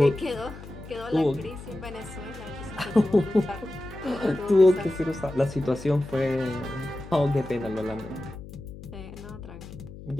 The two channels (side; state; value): left; noise; hum, 14 dB below the sound